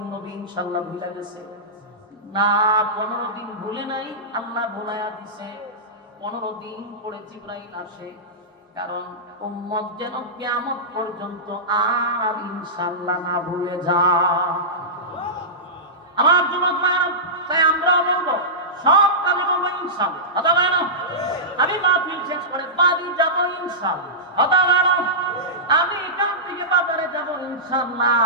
নবী ইনশাআল্লাহ ভুলে গেছে? না, 15 দিন ভুলে নাই, আল্লাহ ভুলাইয়া দিছে। 15 দিন পরে জিবরাইল আসে, কারণ উম্মত যেন কিয়ামত পর্যন্ত আর ইনশাআল্লাহ না ভুলে যায়। আমার যুবক ভাইরা, তাই আমরা বলবো সব কাজে বলবো ইনশাআল্লাহ। কথা বলেন, আমি মাহফিল শেষ করে বাড়ি যাব ইনশাআল্লাহ। কথা বলেন, আমি এখান থেকে বাজারে যাব ইনশাআল্লাহ,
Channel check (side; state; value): both; normal; correlation -0.16